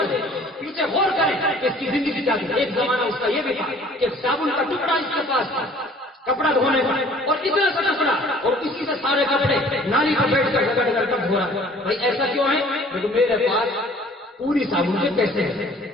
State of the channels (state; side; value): normal; both; correlation 0.53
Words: پیچھے غور کریں کہ اس کی زندگی کیا تھی۔ ایک زمانہ اس کا یہ بھی تھا کہ صابن کا ٹکڑا اس کے پاس تھا کپڑا دھونے کا، اور اتنا سا ٹکڑا، اور اسی سے سارے کپڑے نالی پر بیٹھ کر رگڑ کر دھو رہا۔ بھائی ایسا کیوں ہے؟ کیونکہ میرے پاس پوری صابن کے پیسے ہیں،